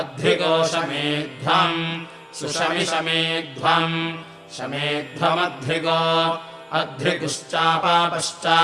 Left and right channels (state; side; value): identical; both; correlation 1.00